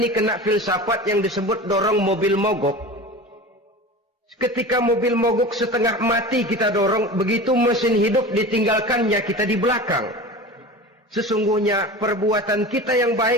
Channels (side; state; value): both; normal; correlation 0.33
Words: kena filsafat yang disebut dorong mobil mogok. Ketika mobil mogok setengah mati kita dorong, begitu mesin hidup ditinggalkannya kita di belakang. Sesungguhnya perbuatan kita yang